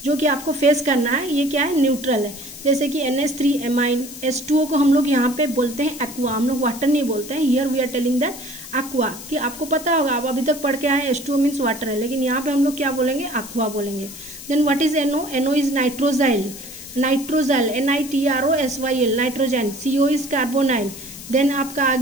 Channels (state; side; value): noise; left; hiss, 14 dB below the sound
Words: जो कि आपको फेस करना है, ये क्या है, न्यूट्रल है। जैसे कि NH3 एमाइन, H2O को हम लोग यहाँ पे बोलते हैं एक्वा, हम लोग वाटर नहीं बोलते हैं। Here we are telling that aqua, कि आपको पता होगा, आप अभी तक पढ़ के आए H2O मीन्स वाटर है, लेकिन यहाँ पे हम लोग क्या बोलेंगे, एक्वा बोलेंगे। Then what is NO, NO is nitrosyl, NitroSyl, nitrogen. CO is carbonyl. Then आपका आ